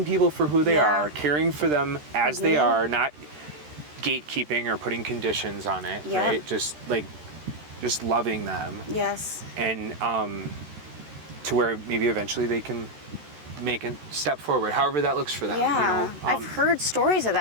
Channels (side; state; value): left; late; 13 ms